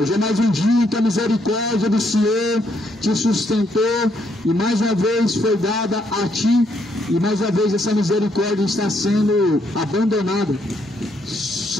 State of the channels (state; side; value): normal; both; correlation 0.73